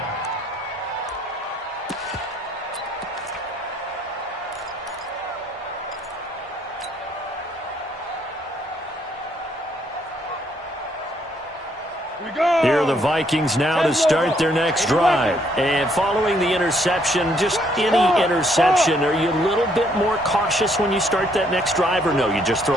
Here are the Vikings now to start their next drive. And following the interception, just any interception, are you a little bit more cautious when you start that next drive, or no, you just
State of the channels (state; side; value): normal; both; correlation 0.69